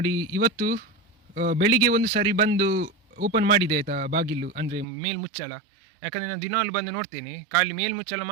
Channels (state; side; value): drops out; left; at 4.9 s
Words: ಇವತ್ತು ಬೆಳಿಗ್ಗೆ ಒಂದು ಸಾರಿ ಬಂದು ಓಪನ್ ಮಾಡಿದೆ ಆಯಿತಾ ಬಾಗಿಲು, ಅಂದರೆ ಮೇಲ್ಮುಚ್ಚಳ. ಯಾಕಂದರೆ ನಾನು ದಿನಾಲು ಬಂದು ನೋಡ್ತೇನೆ, ಖಾಲಿ ಮೇಲ್ಮುಚ್ಚಳ